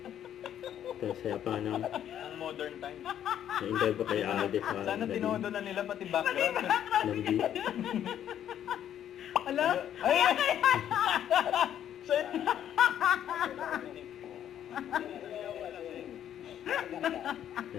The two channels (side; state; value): right; quieter; 10.3 dB